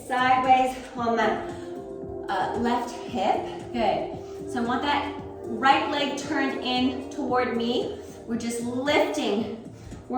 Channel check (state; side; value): identical; both; correlation 1.00